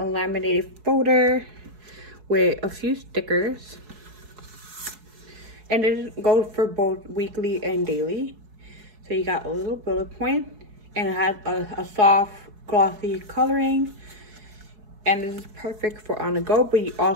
laminated folder with a few stickers, and it goes for both weekly and daily. So you got a little bullet point, and it has a soft glossy coloring, and this is perfect for on the go. But you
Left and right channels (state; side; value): late; left; 4.7 ms